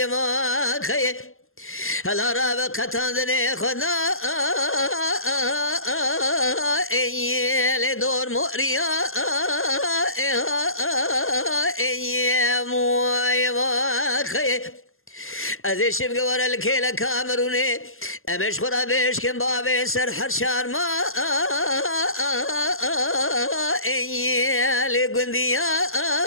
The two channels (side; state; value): right; late; 0.61 ms